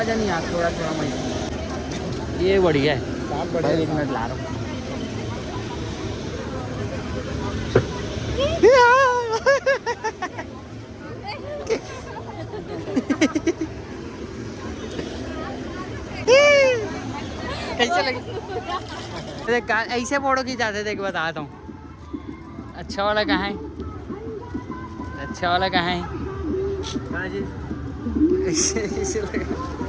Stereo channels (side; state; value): both; identical; correlation 1.00